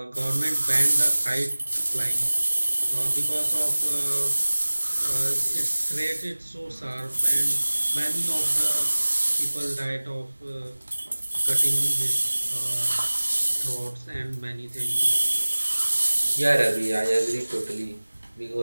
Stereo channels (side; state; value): both; inverted; correlation -1.00